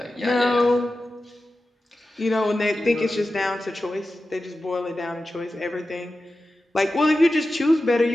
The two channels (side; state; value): both; normal; correlation 0.93